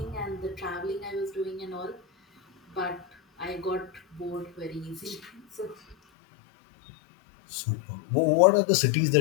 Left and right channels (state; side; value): drops out; right; at 6.0 s